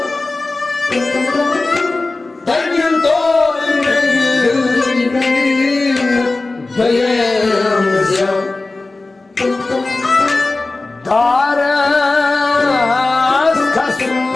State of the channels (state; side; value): quieter; right; 3.3 dB